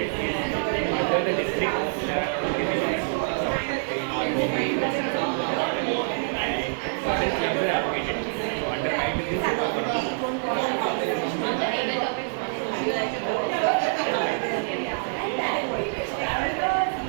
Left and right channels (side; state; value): left; silent; 61 dB below the other